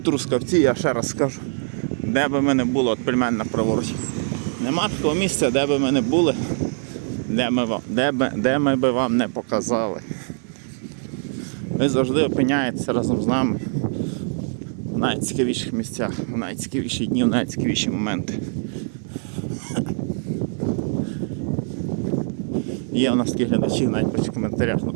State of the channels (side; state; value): left; silent; 61 dB below the other